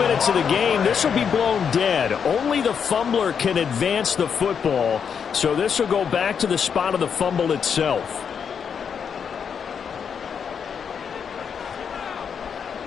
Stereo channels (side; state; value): right; quieter; 7.0 dB